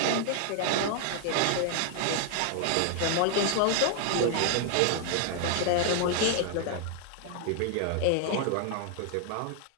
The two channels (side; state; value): both; different; correlation 0.00